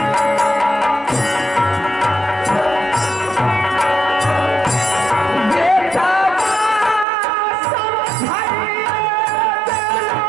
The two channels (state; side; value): drops out; left; at 7.1 s